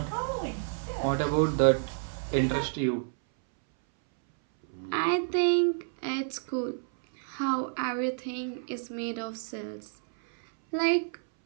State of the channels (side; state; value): left; silent; 58 dB below the other